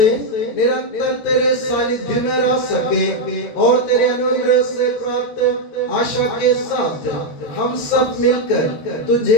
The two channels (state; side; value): late; right; 13 ms